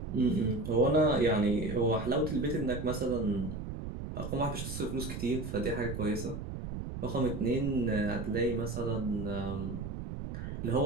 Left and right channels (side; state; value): right; noise; rumble, 7 dB below the sound